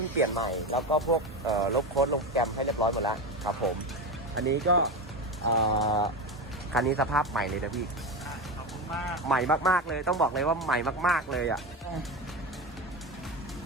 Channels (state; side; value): normal; both; correlation 0.19